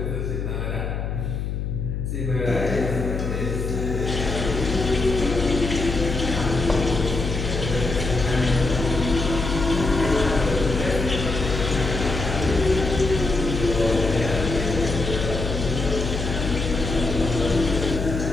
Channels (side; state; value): left; noise; hum, 3 dB below the sound